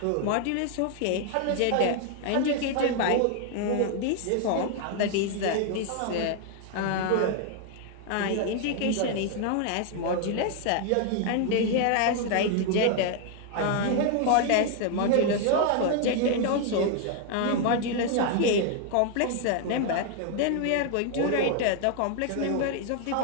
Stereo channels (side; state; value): both; different; correlation 0.00